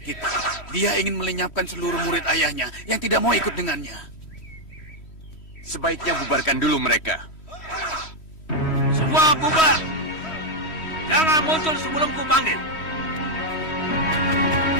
kita. Dia ingin melenyapkan seluruh murid ayahnya yang tidak mau ikut dengannya. Sebaiknya bubarkan dulu mereka. Semua bubar. Jangan muncul sebelum ku panggil.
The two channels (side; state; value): right; late; 3.1 ms